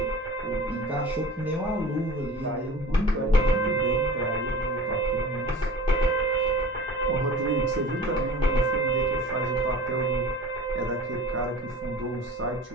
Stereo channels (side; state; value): both; normal; correlation 0.39